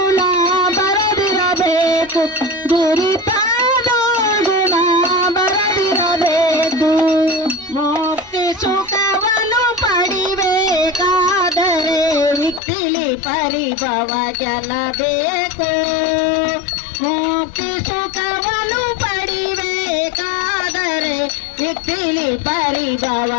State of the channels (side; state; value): right; drops out; at 12.6 s